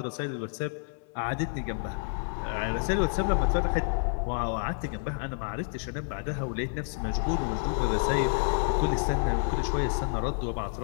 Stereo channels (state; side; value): silent; right; 58 dB below the other